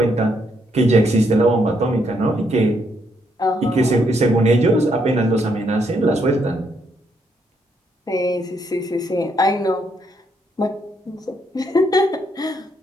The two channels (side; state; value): both; normal; correlation 0.74